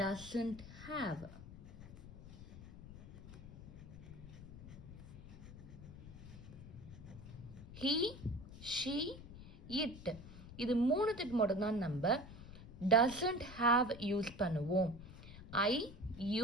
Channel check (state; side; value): noise; left; rumble, 14 dB below the sound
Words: doesn't have. he, she, it இது 3த்துக்கு மட்டும்தான் நம்ம doesn't have யூஸ் பண்ணுவோம். I,